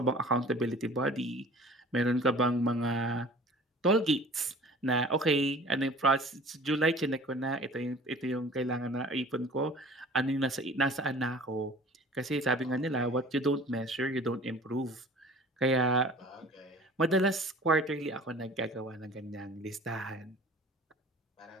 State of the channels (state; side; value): normal; both; correlation 0.46